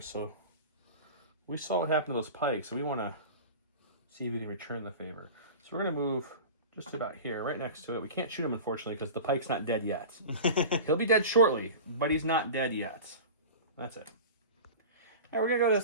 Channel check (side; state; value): both; inverted; correlation -0.33